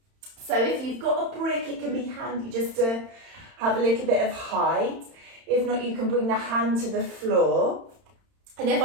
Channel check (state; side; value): late; left; 31 ms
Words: So if you've got a brick, it can be handy just to have a little bit of height. If not, you can bring the hand to the floor. And if